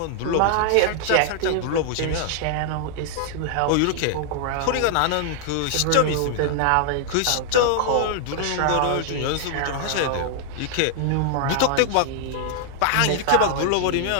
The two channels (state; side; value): different; both; correlation 0.00